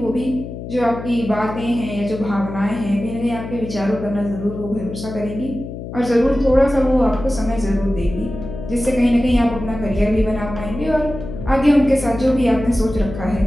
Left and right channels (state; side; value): noise; left; hum, 9 dB below the sound